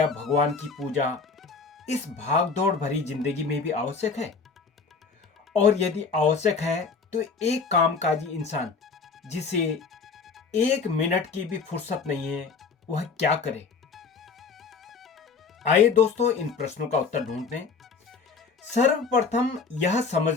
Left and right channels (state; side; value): quieter; right; 5.0 dB